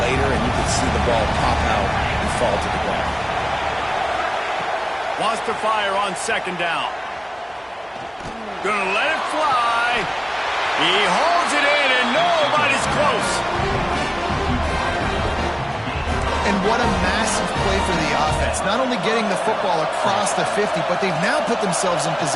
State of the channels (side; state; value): both; identical; correlation 1.00